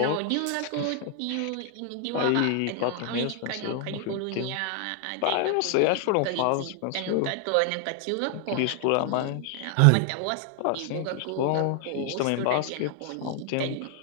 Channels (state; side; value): different; both; correlation 0.00